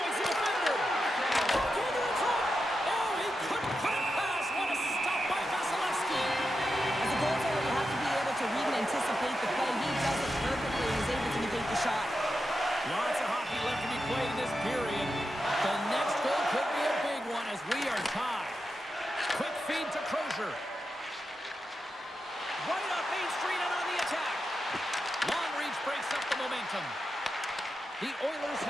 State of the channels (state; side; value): normal; both; correlation 0.89